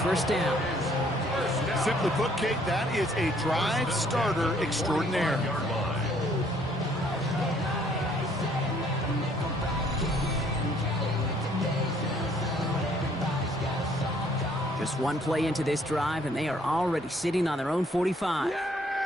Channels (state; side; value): normal; both; correlation 0.63